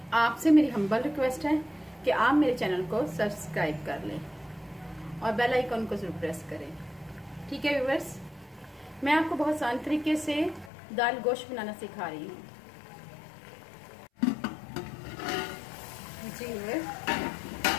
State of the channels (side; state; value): right; drops out; at 10.7 s